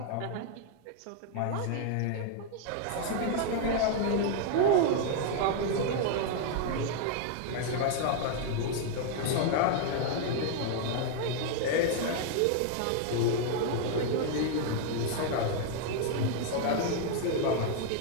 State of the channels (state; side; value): different; both; correlation 0.00